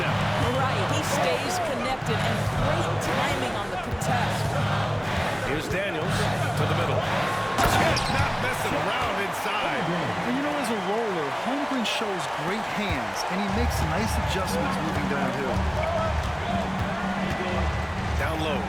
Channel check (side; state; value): both; identical; correlation 1.00